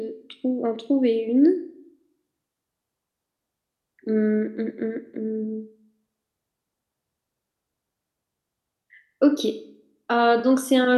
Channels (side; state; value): both; identical; correlation 1.00